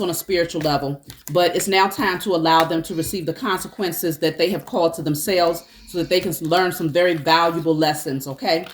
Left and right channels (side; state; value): both; identical; correlation 1.00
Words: on a spiritual level, but it's now time to allow them to receive the consequences that they have called to themselves, so that they can learn some very valuable lessons, okay?